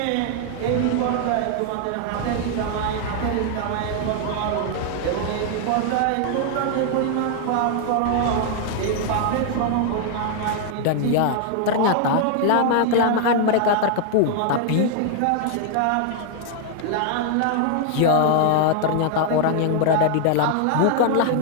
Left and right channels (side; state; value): both; different; correlation 0.00